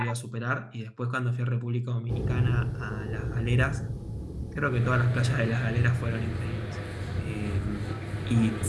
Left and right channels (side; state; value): both; identical; correlation 1.00